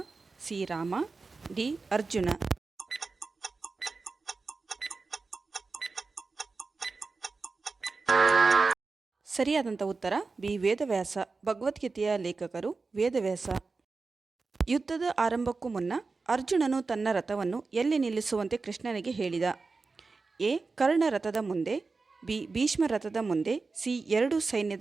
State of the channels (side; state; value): left; quieter; 4.1 dB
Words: C Rama, D Arjuna. ಸರಿಯಾದಂಥ ಉತ್ತರ ಬಿ ವೇದವ್ಯಾಸ. ಭಗವದ್ಗೀತೆಯ ಲೇಖಕರು ವೇದವ್ಯಾಸ. ಯುದ್ಧದ ಆರಂಭಕ್ಕೂ ಮುನ್ನ ಅರ್ಜುನನು ತನ್ನ ರಥವನ್ನು ಎಲ್ಲಿ ನಿಲ್ಲಿಸುವಂತೆ ಕೃಷ್ಣನಿಗೆ ಹೇಳಿದ? ಎ ಕರ್ಣ ರಥದ ಮುಂದೆ, ಬಿ ಭೀಷ್ಮ ರಥದ ಮುಂದೆ, ಸಿ ಎರಡು